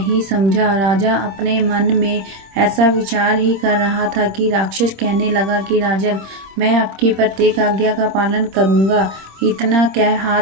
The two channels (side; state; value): left; late; 26 ms